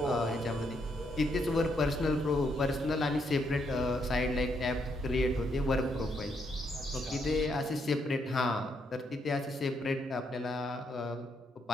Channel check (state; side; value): normal; both; correlation 0.76